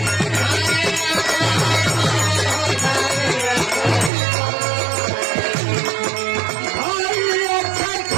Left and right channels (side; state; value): left; drops out; at 4.1 s